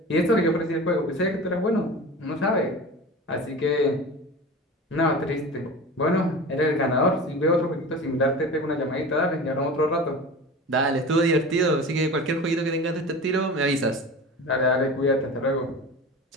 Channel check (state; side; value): normal; both; correlation 0.33